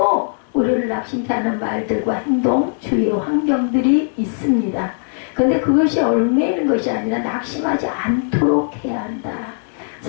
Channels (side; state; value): right; silent; digital silence